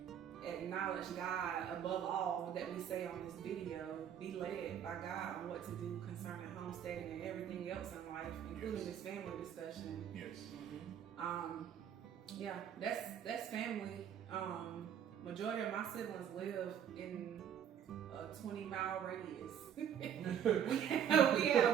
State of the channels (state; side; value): quieter; left; 9.1 dB